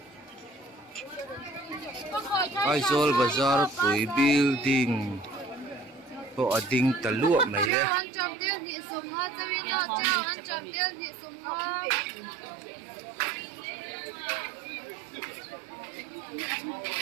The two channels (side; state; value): left; drops out; at 7.7 s